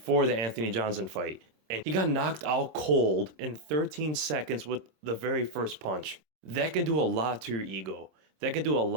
the Anthony Johnson fight. And he got knocked out cold in 13 seconds with the very first punch. That can do a lot to your ego. That can do a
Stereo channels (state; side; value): late; left; 26 ms